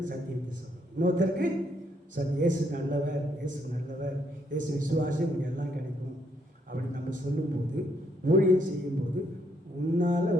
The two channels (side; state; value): both; normal; correlation 0.73